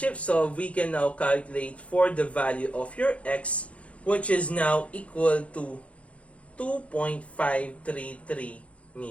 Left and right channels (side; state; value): right; late; 0.063 ms